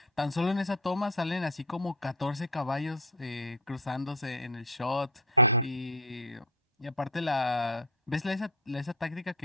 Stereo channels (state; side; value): normal; both; correlation 0.20